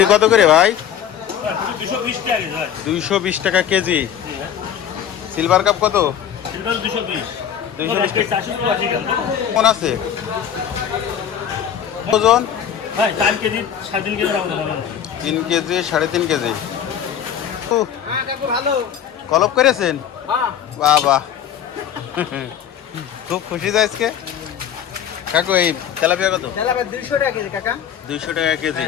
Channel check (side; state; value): right; quieter; 9.2 dB